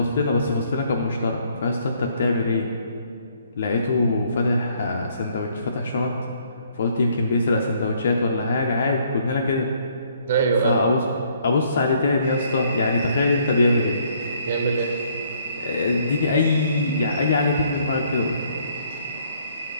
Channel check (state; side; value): inverted; both; correlation -0.65